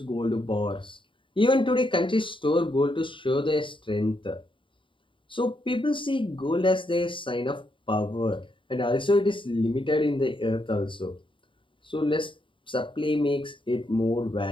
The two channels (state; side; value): late; right; 0.25 ms